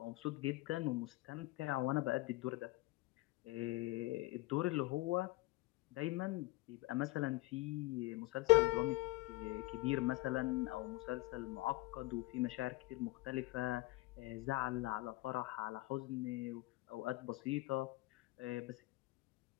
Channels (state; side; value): quieter; right; 20.6 dB